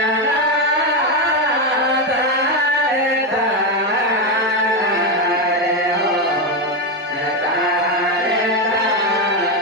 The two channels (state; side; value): normal; both; correlation 0.09